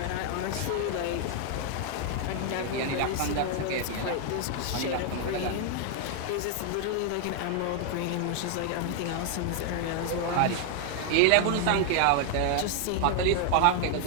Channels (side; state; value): both; different; correlation 0.00